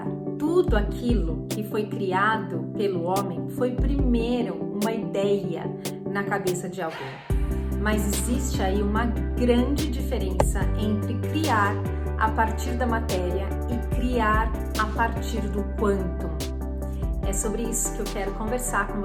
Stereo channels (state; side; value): identical; both; correlation 1.00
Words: Tudo aquilo que foi criado pelo homem foi primeiro uma ideia na cabeça de alguém. Mas existe aí uma grande diferença entre criar a partir da matéria e criar a partir do quantum. É sobre isso que eu quero conversar com